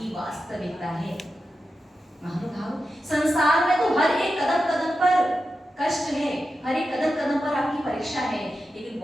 वास्तविकता है। महानुभाव, संसार में तो हर एक कदम कदम पर कष्ट है, हर एक कदम कदम पर आपकी परीक्षा है, लेकिन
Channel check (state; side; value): normal; both; correlation 0.90